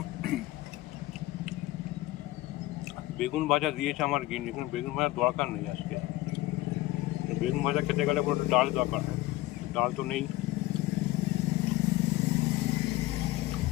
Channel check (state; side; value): quieter; right; 17.4 dB